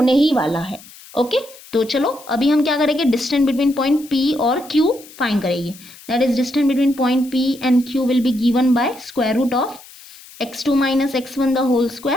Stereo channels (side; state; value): left; noise; hiss, 20 dB below the sound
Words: ही वाला है। ओके, तो चलो अभी हम क्या करेंगे, डिस्टेंस बिटवीन पॉइंट P और Q फाइंड करेंगे। That is distance between point P and Q will be given by square root of x2 minus x1 the whole